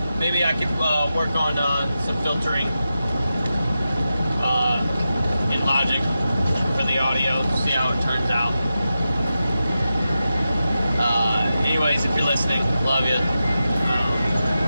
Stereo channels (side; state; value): both; inverted; correlation -0.91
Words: Maybe I could work on some filtering in Logic for the audio, see how it turns out. Anyways, if you're listening, love you.